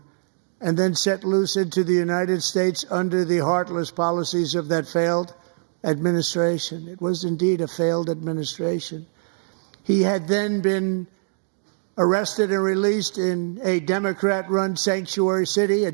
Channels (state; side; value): silent; left; 62 dB below the other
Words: and then set loose into the United States under the heartless policies of that failed administration. It was indeed a failed administration. He had then been arrested and released in a Democrat-run sanctuary city, a